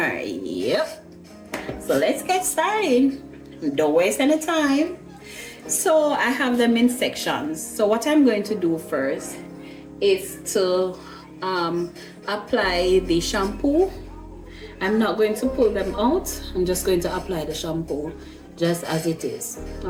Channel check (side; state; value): both; identical; correlation 1.00